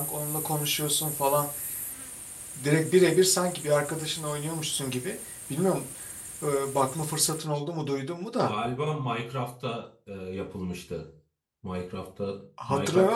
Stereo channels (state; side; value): identical; both; correlation 1.00